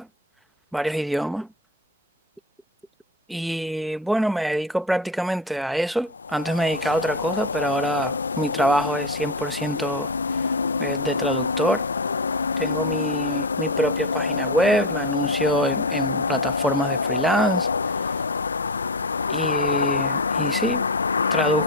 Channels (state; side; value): normal; both; correlation 0.18